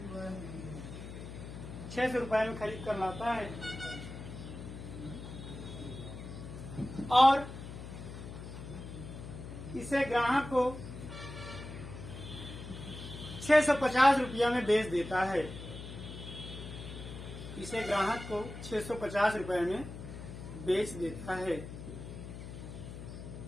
600 रुपए में खरीद कर लाता है और इसे ग्राहक को 650 रुपया में बेच देता है। इसे ग्राहक को 650 रुपए में बेच देता है।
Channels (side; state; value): left; noise; hum, 10 dB below the sound